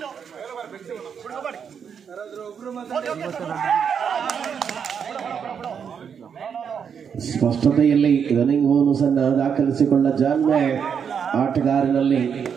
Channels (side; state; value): left; quieter; 7.2 dB